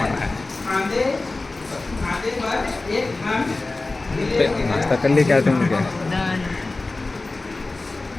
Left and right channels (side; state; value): right; quieter; 3.3 dB